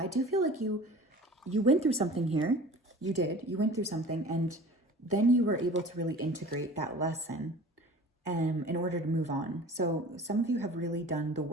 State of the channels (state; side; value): normal; both; correlation 0.42